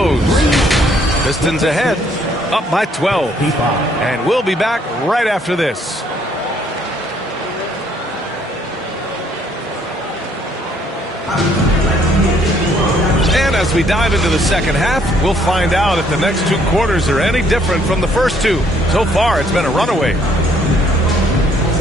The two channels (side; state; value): both; normal; correlation 0.65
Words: Pistons ahead, up by 12. And we'll be back right after this. And as we dive into the second half, we'll find out if the next two quarters are any different from the first two. So far, it's been a runaway.